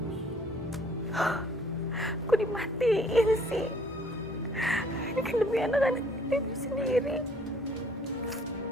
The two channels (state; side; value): normal; both; correlation 0.60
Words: Kok dimatiin sih? Ini kan demi anak-anak ibu sendiri.